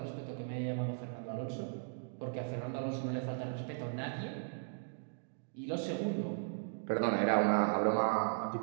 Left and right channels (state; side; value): silent; left; digital silence